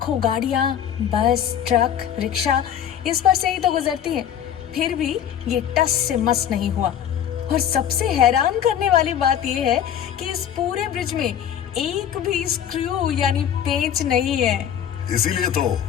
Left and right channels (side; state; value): right; quieter; 9.6 dB